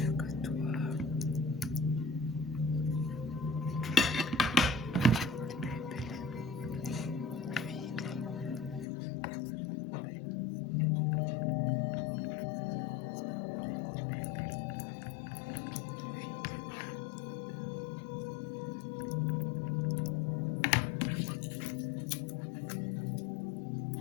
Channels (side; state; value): right; drops out; at 8.8 s